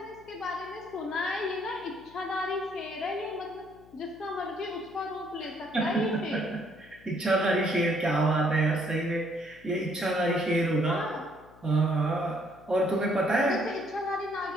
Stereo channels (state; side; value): noise; left; hum, 24 dB below the sound